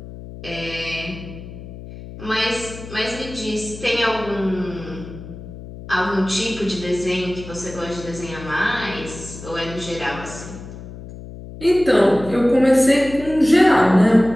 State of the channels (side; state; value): left; noise; hum, 13 dB below the sound